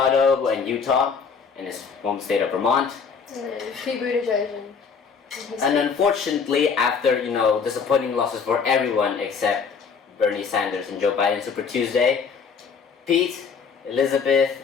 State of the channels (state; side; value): quieter; right; 5.8 dB